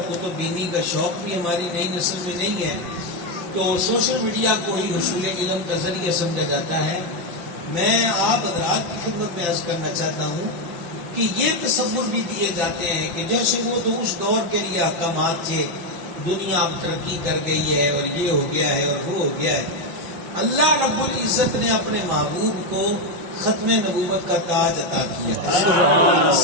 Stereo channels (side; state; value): left; late; 5.9 ms